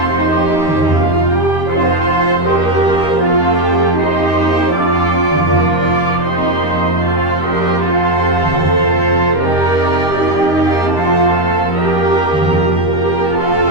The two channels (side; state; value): right; late; 13 ms